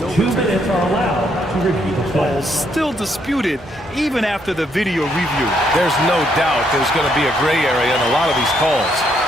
2 minutes are allowed to review the play. Still disputed even after the video review. There's no doubt there's going to be a gray area in a lot of these calls.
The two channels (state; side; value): normal; both; correlation 0.73